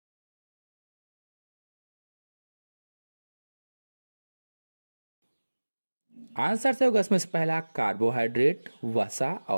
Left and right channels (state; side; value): inverted; both; correlation -1.00